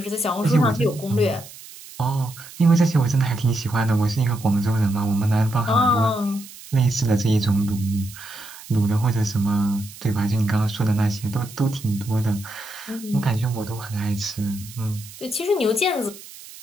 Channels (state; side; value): noise; right; hiss, 17 dB below the sound